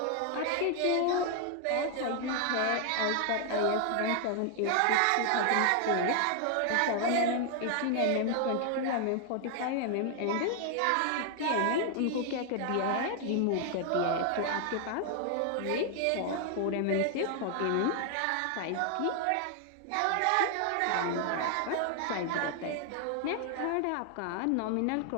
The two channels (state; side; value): different; both; correlation 0.00